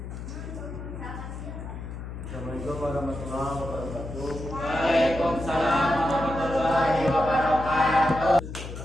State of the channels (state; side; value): noise; left; hum, 9 dB below the sound